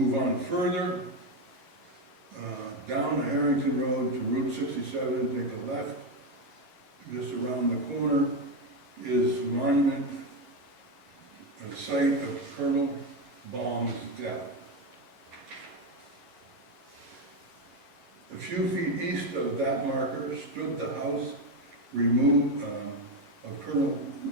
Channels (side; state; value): left; late; 11 ms